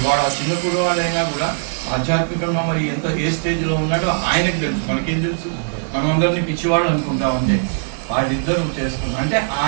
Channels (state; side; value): silent; left; digital silence